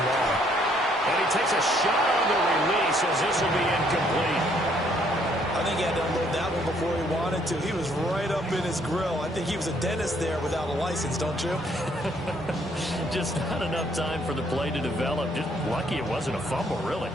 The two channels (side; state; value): both; normal; correlation 0.67